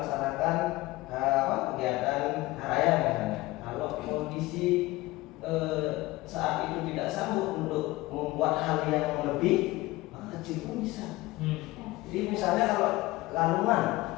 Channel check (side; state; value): right; quieter; 19.6 dB